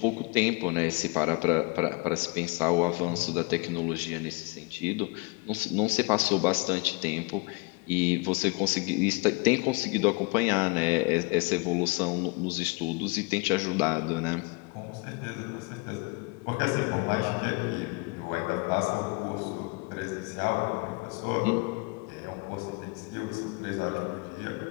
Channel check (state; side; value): quieter; right; 28.9 dB